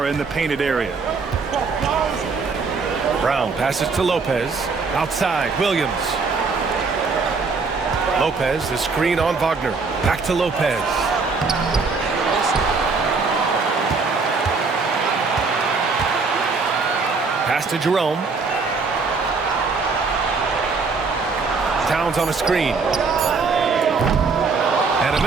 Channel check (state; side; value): quieter; left; 4.5 dB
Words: in the painted area. Brown passes to Lopez. Outside, Williams. Lopez, the screen on Wagner. Back to Lopez. Pass to Jerome. Towns on a screen. And a